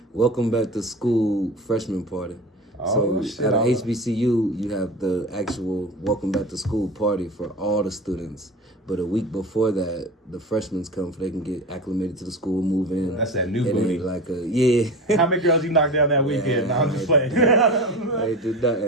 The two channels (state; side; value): normal; both; correlation 0.30